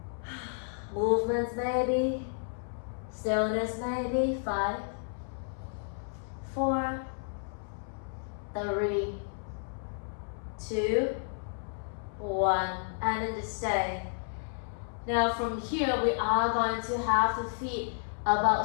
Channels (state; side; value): silent; right; 57 dB below the other